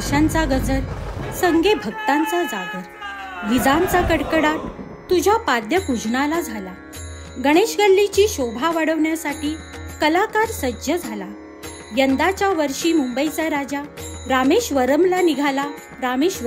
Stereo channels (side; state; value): both; identical; correlation 1.00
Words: ताशांचा गजर, संगे भक्तांचा जागर, विजांचा कडकडाट तुझ्या पाद्यपूजनाला झाला. गणेश गल्लीची शोभा वाढवण्यासाठी कलाकार सज्ज झाला. यंदाच्या वर्षी मुंबईचा राजा रामेश्वरमला